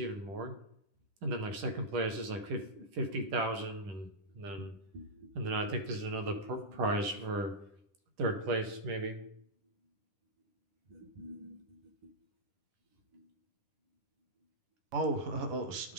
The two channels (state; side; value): late; left; 10 ms